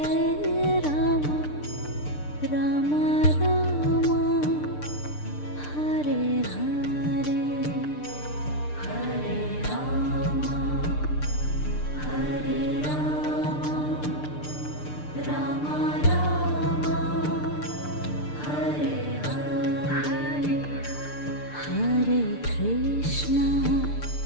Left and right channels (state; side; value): late; right; 6.7 ms